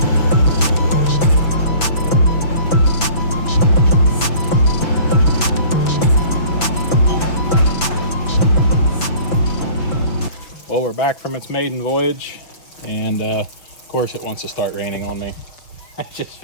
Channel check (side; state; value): right; late; 6.0 ms